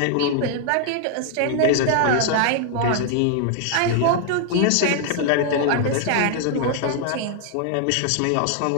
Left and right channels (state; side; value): different; both; correlation 0.00